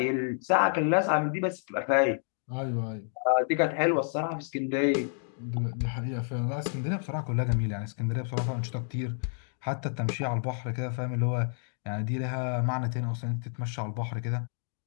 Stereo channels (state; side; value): silent; right; digital silence